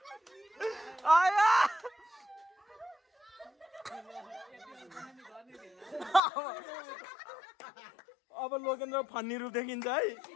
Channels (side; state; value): right; drops out; at 6.2 s